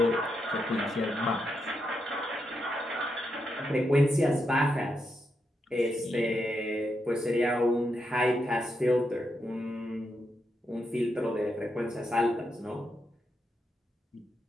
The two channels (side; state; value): both; normal; correlation 0.83